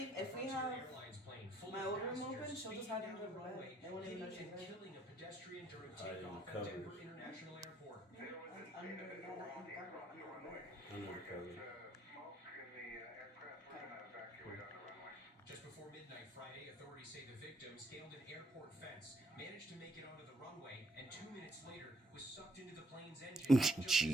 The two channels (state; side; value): normal; both; correlation 0.68